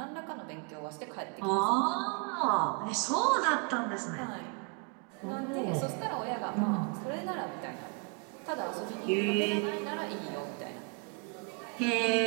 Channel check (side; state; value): left; quieter; 33.8 dB